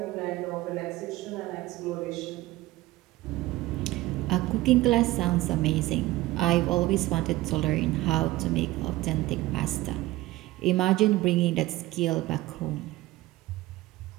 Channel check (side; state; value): left; quieter; 17.9 dB